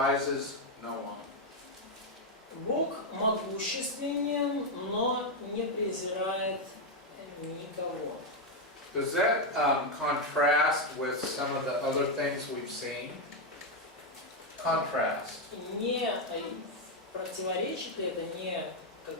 no one. Бог могущественен, но не презирает никого. Does that contrast with some of the other things we've seen? Contrast. Не противоречит ли это, не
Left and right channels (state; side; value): normal; both; correlation 0.03